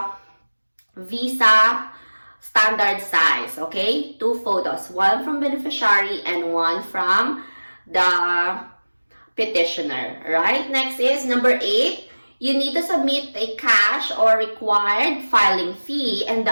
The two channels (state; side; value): inverted; both; correlation -1.00